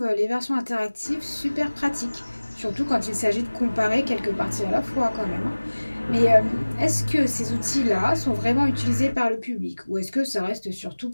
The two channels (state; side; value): inverted; both; correlation -1.00